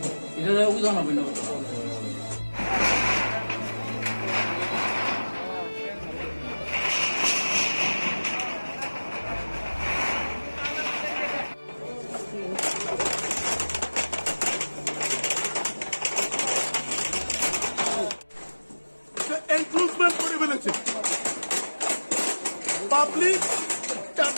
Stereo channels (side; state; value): both; inverted; correlation -1.00